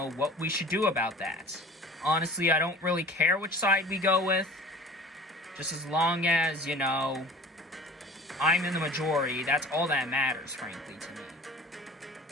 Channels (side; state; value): both; normal; correlation 0.42